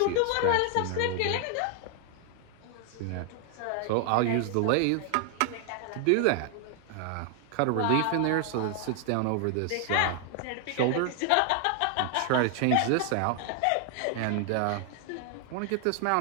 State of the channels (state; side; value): different; both; correlation 0.00